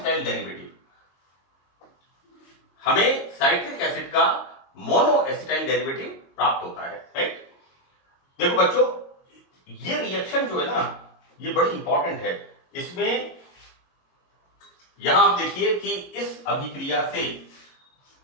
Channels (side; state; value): right; late; 22 ms